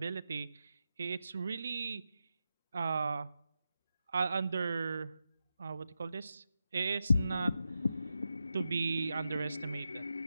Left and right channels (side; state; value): both; inverted; correlation -0.89